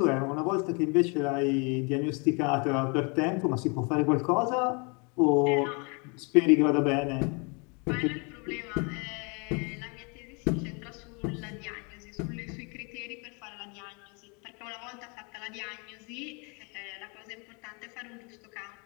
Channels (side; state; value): right; quieter; 32.7 dB